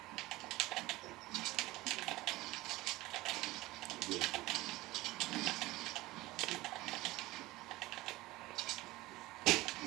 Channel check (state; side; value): quieter; left; 19.0 dB